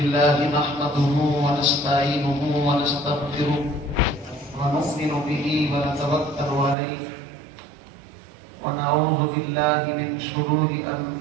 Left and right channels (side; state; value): left; drops out; at 6.8 s